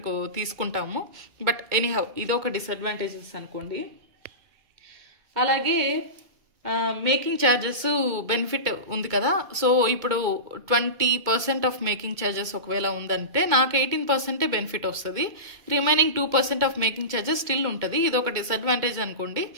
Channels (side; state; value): left; late; 2.1 ms